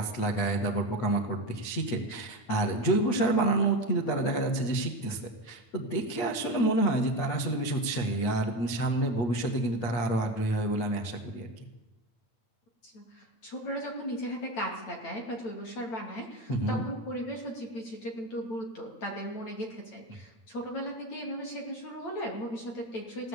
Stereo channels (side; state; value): right; late; 8.4 ms